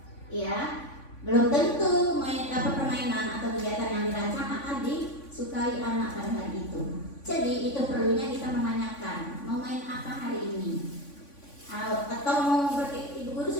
Ya, belum tentu permainan atau kegiatan yang dirancang akan disukai anak pada hari itu. Jadi itu perlunya kita menanyakan, mau main apa hari ini? Atau Ibu Guru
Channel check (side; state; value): right; late; 3.5 ms